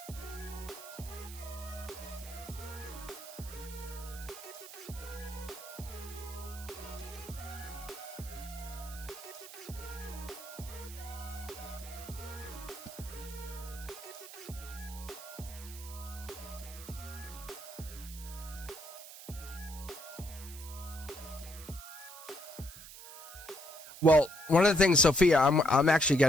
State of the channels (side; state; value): right; noise; hiss, 14 dB below the sound